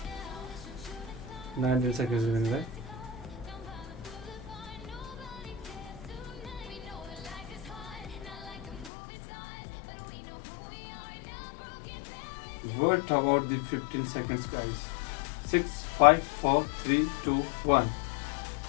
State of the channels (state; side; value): drops out; right; at 8.9 s